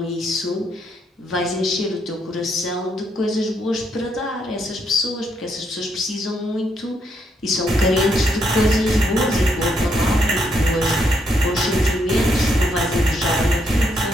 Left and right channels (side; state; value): both; normal; correlation 0.76